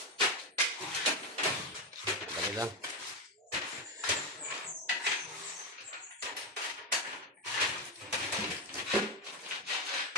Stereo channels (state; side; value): normal; both; correlation 0.11